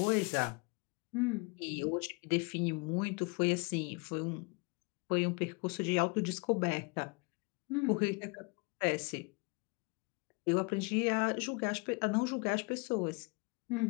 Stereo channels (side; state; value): right; quieter; 30.9 dB